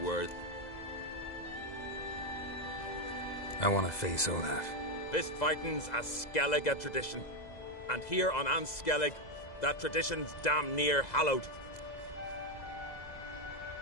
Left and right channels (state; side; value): late; right; 2.0 ms